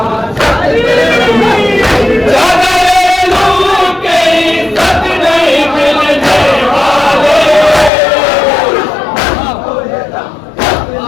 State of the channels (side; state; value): right; drops out; at 7.9 s